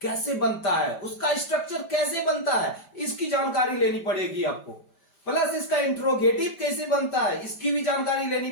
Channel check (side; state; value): right; late; 5.1 ms